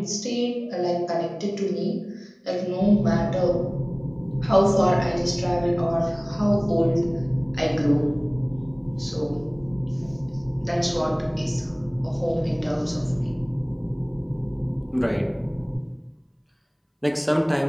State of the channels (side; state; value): both; identical; correlation 1.00